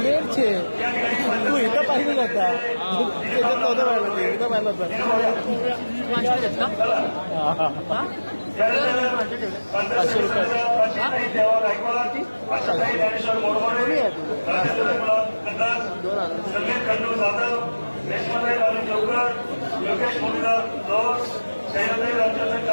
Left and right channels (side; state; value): both; inverted; correlation -1.00